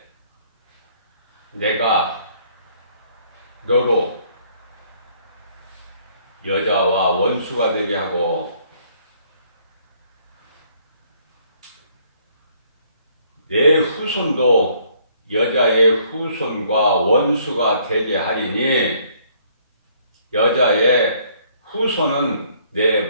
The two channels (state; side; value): inverted; both; correlation -0.64